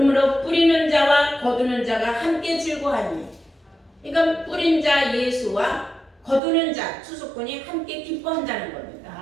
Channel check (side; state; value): left; drops out; at 6.4 s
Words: 뿌리는 자와 거두는 자가 함께 즐거하니, 그러니까 뿌린 자 예수와 거두는 자 추수꾼이 함께 기뻐한다는 겁니다.